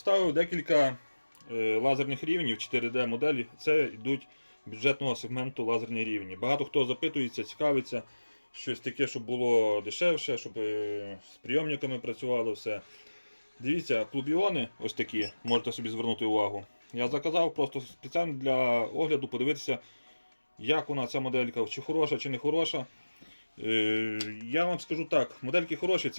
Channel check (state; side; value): inverted; both; correlation -1.00